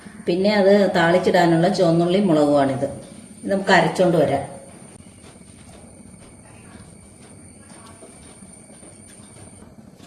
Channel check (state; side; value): identical; both; correlation 1.00